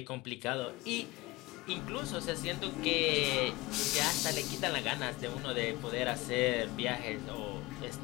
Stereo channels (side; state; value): right; quieter; 21.0 dB